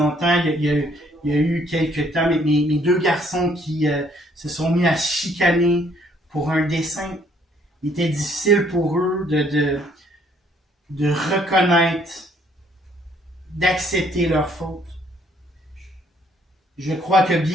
il y a eu quelques temps, mes deux garçons qui se sont mis à chicaner pour un dessin. Il était difficile pour eux de reconnaître, d'accepter leur faute. Je crois que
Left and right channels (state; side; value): normal; both; correlation 0.65